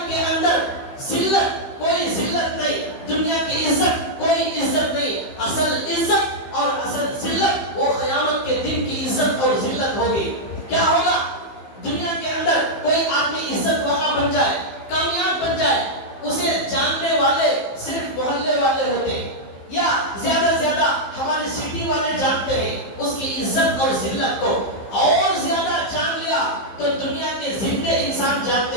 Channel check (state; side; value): late; right; 15 ms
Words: جائے، کامیاب بن جائے، اسے جاننے والے صرف محلے والے ہوتے ہیں یا زیادہ سے زیادہ ہمارے سٹی والے جانتے ہیں اس کی عزت اور ذلت کو، اور زیادہ جان لیا تو دنیا کے زندے انسان